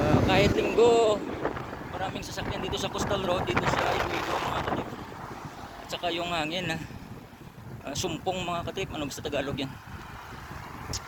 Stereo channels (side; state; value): both; identical; correlation 1.00